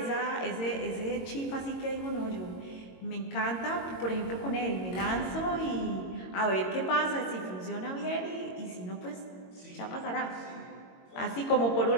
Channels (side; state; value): right; late; 22 ms